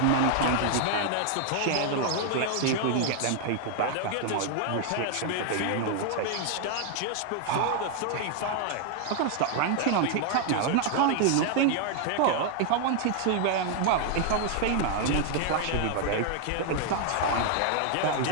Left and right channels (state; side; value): different; both; correlation 0.00